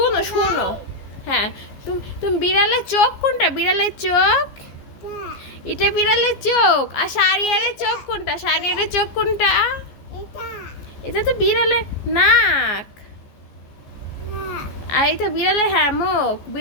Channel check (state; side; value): late; right; 14 ms